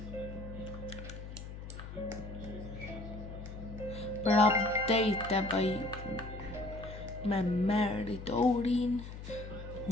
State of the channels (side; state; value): left; noise; hum, 10 dB below the sound